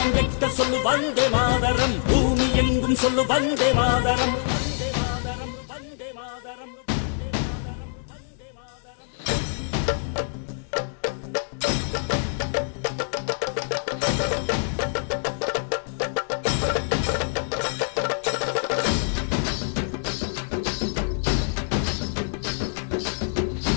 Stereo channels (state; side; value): silent; right; digital silence